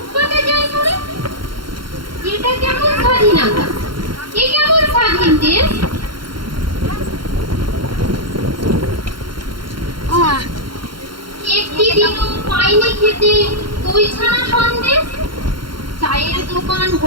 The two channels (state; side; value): late; left; 0.73 ms